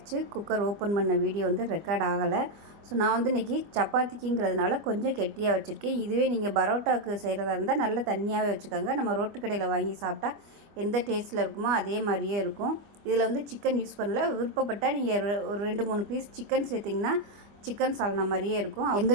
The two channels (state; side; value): late; left; 25 ms